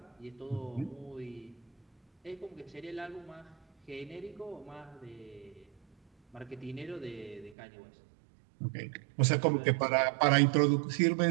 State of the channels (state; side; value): drops out; left; at 7.6 s